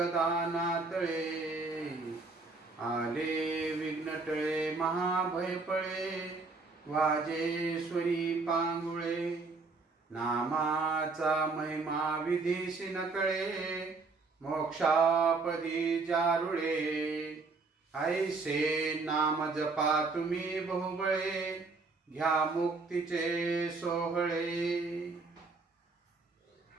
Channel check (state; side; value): quieter; left; 3.9 dB